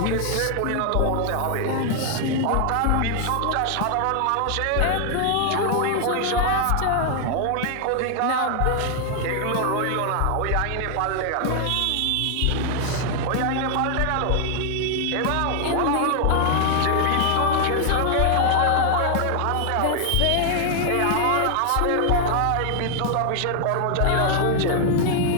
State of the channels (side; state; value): both; different; correlation 0.00